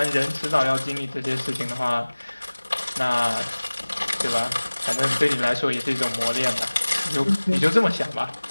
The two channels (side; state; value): both; inverted; correlation -1.00